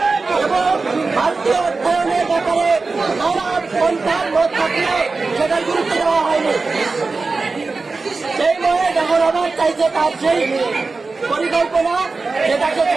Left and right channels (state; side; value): quieter; left; 4.0 dB